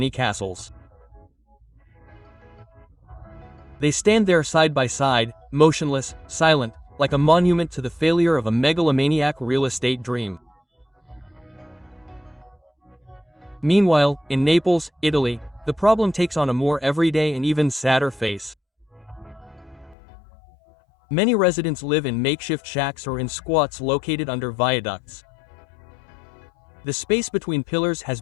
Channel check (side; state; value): right; drops out; at 20.0 s